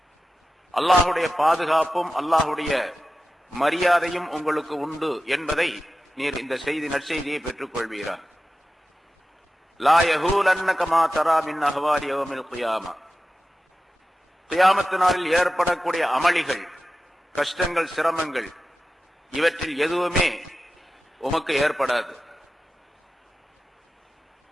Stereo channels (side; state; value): both; normal; correlation 0.94